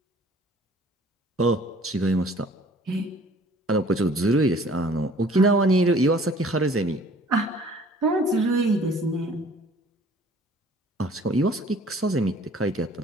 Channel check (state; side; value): normal; both; correlation 0.53